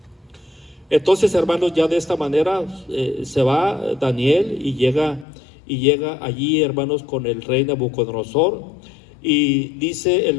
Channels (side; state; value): right; drops out; at 5.2 s